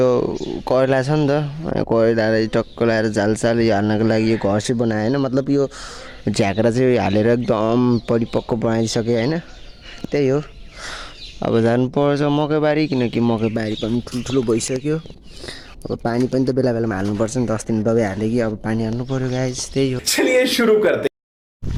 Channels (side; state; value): both; identical; correlation 1.00